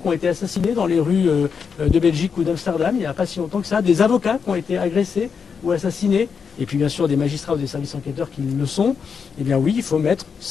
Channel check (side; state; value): right; quieter; 6.1 dB